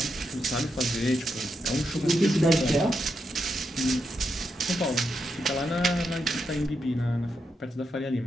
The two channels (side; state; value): both; normal; correlation 0.83